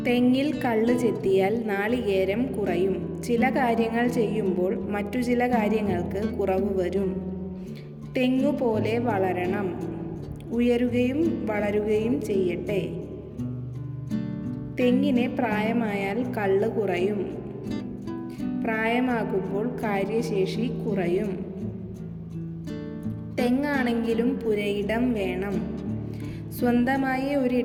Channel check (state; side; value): identical; both; correlation 1.00